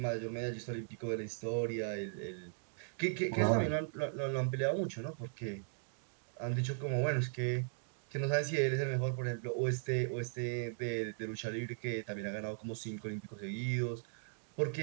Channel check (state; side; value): silent; left; digital silence